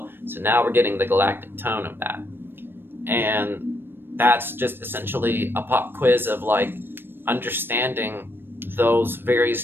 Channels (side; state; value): left; late; 0.099 ms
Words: So now we're getting the galactic tone of that. And that's just essentially a pop quiz of like understanding those